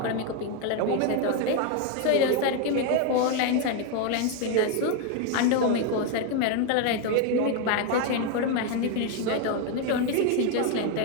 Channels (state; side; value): different; both; correlation 0.01